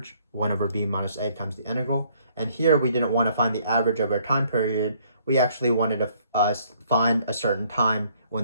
1 over b minus a times the integral. And here we didn't want to find the average over a time period. We actually wanted to find a certain time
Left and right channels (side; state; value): both; inverted; correlation -0.65